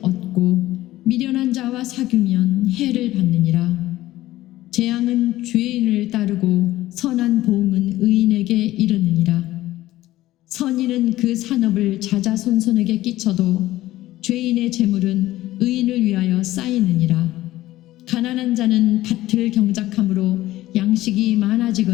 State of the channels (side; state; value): right; quieter; 15.8 dB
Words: 얻고 미련한 자와 사귀면 해를 받느니라. 재앙은 죄인을 따르고 선한 보응은 의인에게 이르느니라. 선인은 그 산업을 자자손손에게 끼쳐도 죄인의 재물은 의인을 위하여 쌓이느니라. 가난한 자는 밭을 경작함으로 양식이